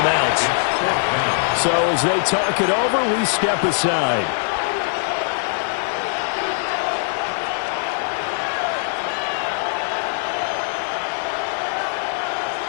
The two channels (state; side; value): silent; right; 65 dB below the other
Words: So as they talk it over, we step aside.